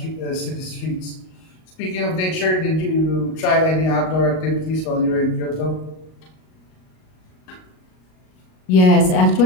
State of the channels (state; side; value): late; right; 38 ms